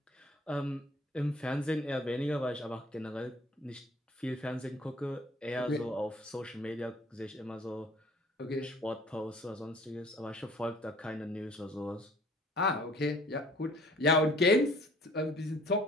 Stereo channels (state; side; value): normal; both; correlation 0.54